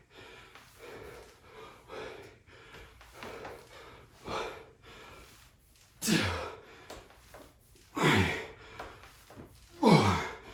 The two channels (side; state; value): both; identical; correlation 1.00